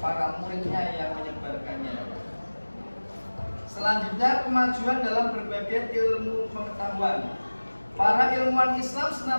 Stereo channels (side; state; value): both; inverted; correlation -1.00